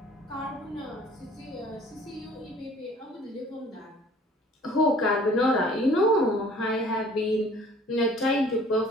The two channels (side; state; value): both; normal; correlation 0.52